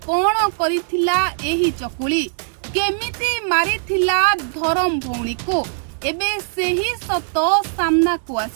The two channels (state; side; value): silent; left; 66 dB below the other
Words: कौन करिथिला एही चकुली केमिति मारिथिला धरम भौणी को एबे सेही सत सामना को